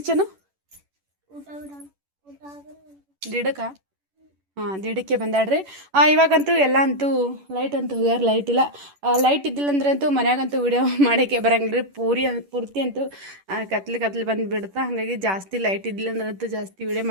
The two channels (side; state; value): left; late; 10 ms